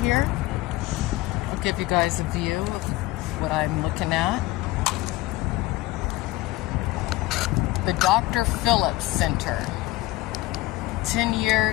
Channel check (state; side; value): quieter; right; 18.7 dB